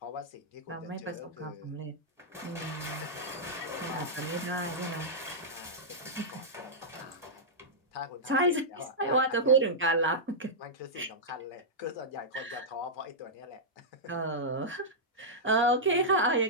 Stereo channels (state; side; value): normal; both; correlation -0.10